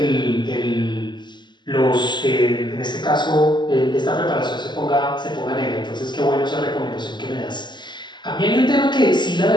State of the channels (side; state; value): right; late; 0.22 ms